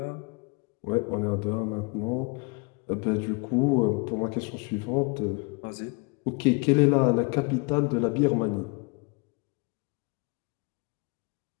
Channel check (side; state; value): right; quieter; 31.2 dB